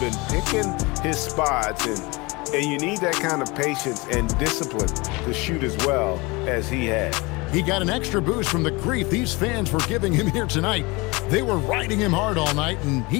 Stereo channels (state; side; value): quieter; right; 25.0 dB